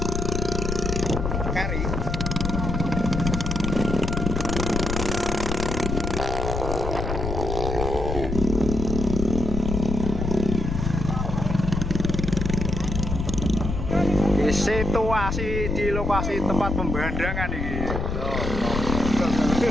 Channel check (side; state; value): left; noise; rumble, 2 dB below the sound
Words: Kari. Situasi di lokasi tempat pembandangan ini.